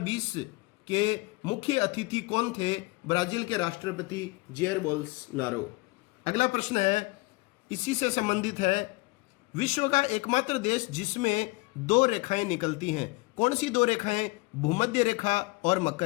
के मुख्य अतिथि कौन थे? ब्राजील के राष्ट्रपति जेयर बोल्सनारो। अगला प्रश्न है इसी से संबंधित है, विश्व का एकमात्र देश जिसमें 2 रेखाएं निकलती हैं, कौन सी 2 रेखाएं? भूमध्य रेखा और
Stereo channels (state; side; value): quieter; right; 24.1 dB